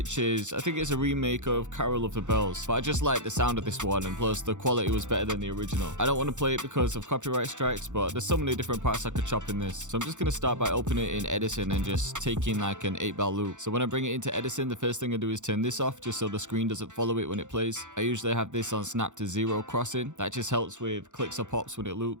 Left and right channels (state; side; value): late; left; 0.85 ms